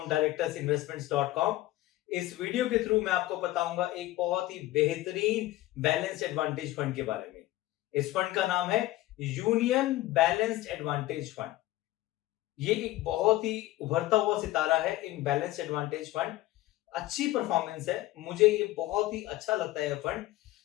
directorsinvestments.com। इस वीडियो के थ्रू मैं आपको बताऊंगा एक बहुत ही बेहतरीन बैलेंस एडवांटेज फंड के बारे में। इस फंड का नाम है यूनियन बैलेंस्ड एडवांटेज फंड। ये एक बहुत ही उभरता हुआ सितारा है इन बैलेंस एडवांटेज फंड। अच्छी परफॉर्मेंस है, मुझे ये बहुत ही अच्छा लगता है फंड।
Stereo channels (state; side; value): quieter; right; 16.6 dB